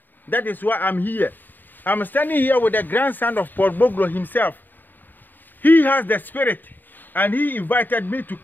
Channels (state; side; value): late; right; 0.090 ms